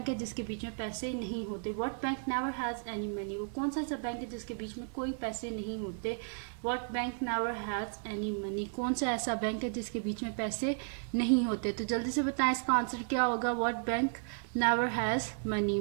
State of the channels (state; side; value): silent; left; digital silence